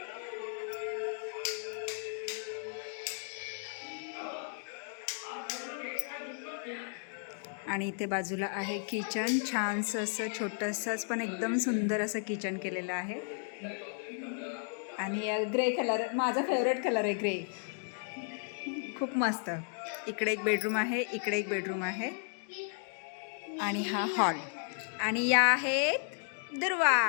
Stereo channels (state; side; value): silent; right; 55 dB below the other